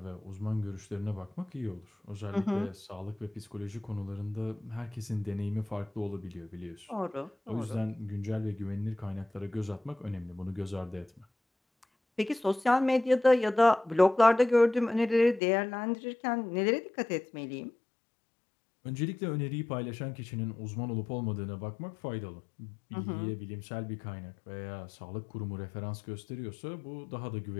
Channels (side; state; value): right; drops out; at 15.4 s